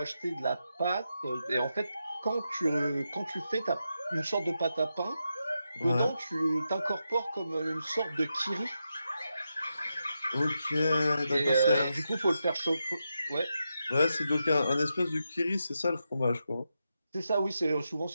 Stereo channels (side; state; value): both; inverted; correlation -0.87